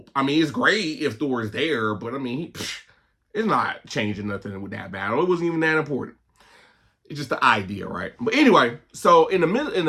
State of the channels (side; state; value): both; identical; correlation 1.00